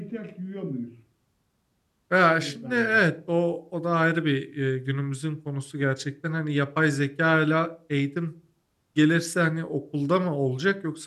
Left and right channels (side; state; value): both; identical; correlation 1.00